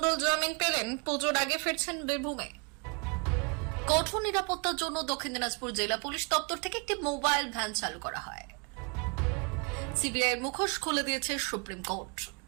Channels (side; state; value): left; quieter; 33.5 dB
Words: জামিন পেলেন, পুজোর আগে ফিরছেন বীরভূমে। কঠোর নিরাপত্তার জন্য দক্ষিণ দিনাজপুর জেলা পুলিশ দপ্তর থেকে একটি মোবাইল ভ্যান চালু করা হয়। সিবিআইয়ের মুখোশ খুলে দিয়েছে সুপ্রিম কোর্ট।